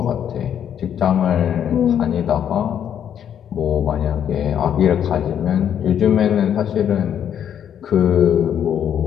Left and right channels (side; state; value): right; quieter; 9.2 dB